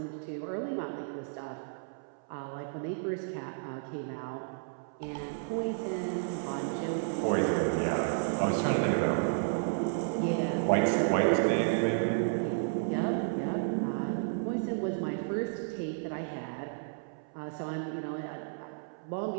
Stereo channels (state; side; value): silent; left; 56 dB below the other